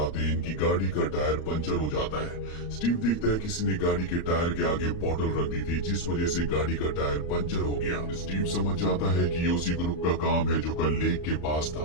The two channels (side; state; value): right; late; 35 ms